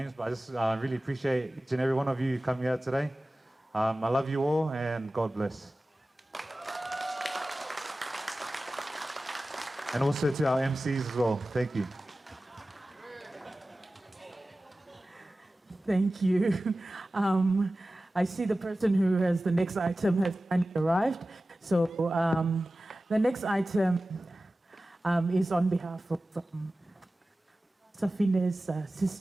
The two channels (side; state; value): both; normal; correlation 0.96